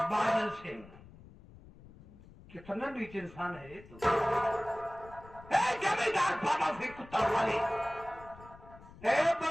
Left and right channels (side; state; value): left; noise; rumble, 20 dB below the sound